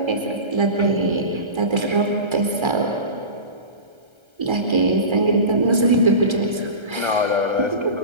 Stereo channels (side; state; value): left; late; 1.3 ms